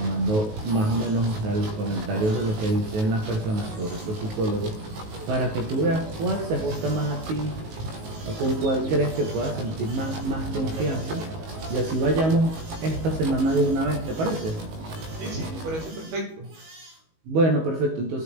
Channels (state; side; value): late; left; 19 ms